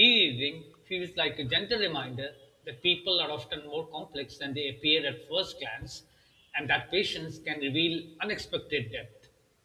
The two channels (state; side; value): identical; both; correlation 1.00